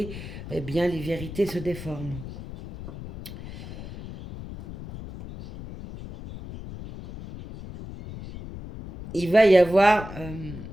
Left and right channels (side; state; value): left; noise; rumble, 12 dB below the sound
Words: eh bien, les vérités se déforment. Il va y avoir,